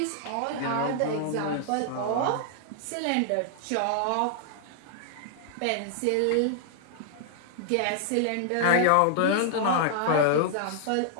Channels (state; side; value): different; both; correlation -0.01